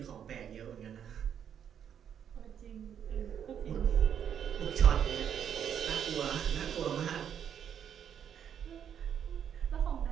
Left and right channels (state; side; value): quieter; left; 8.7 dB